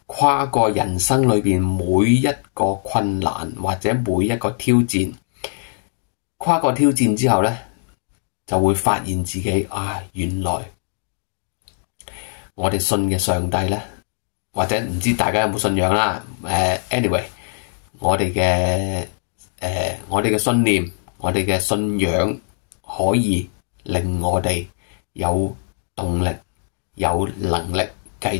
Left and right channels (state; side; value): silent; right; digital silence